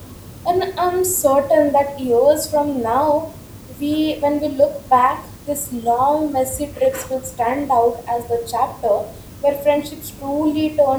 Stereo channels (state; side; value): identical; both; correlation 1.00